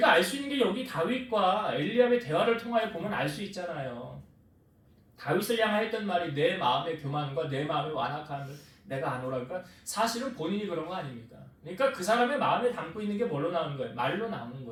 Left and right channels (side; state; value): both; identical; correlation 1.00